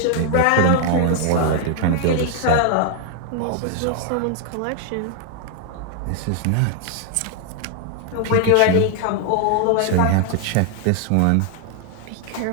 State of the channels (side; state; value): both; different; correlation 0.00